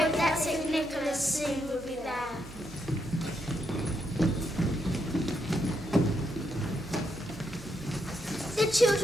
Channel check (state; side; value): normal; both; correlation 0.79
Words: that St. Nicholas soon would be there. The